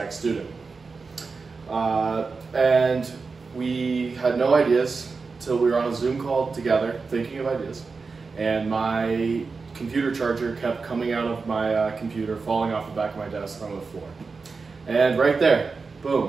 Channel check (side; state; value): left; quieter; 4.5 dB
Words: student. And we had no ideas till we were on a Zoom call together thinking of ideas, and my computer charger kept coming out of my computer, falling off the back of my desk on the floor. And right there,